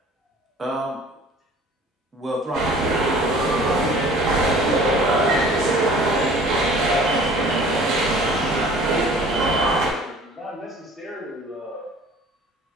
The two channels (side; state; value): both; normal; correlation 0.48